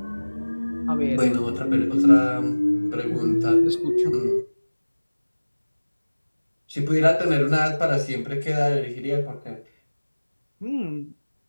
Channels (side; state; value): both; inverted; correlation -1.00